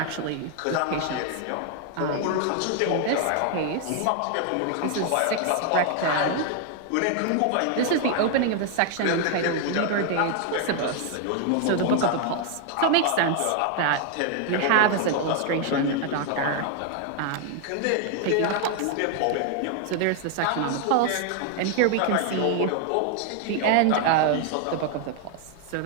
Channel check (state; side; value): different; both; correlation 0.00